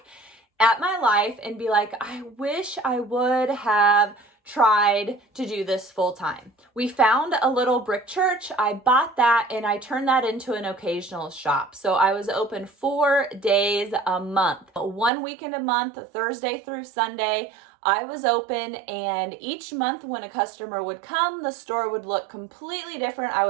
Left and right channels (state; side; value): drops out; left; at 15.1 s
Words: at my life and be like, I wish I would have tried to do this full time. We found a little brick church. I bought that and I turned that into an occasional shop. So I was open 4 days a month, 1 weekend a month, Thursday through Sunday. I was open, and each month when a customer would come, the store would look completely different. I